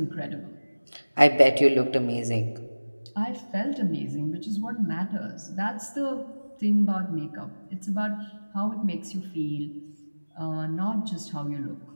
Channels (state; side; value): inverted; both; correlation -1.00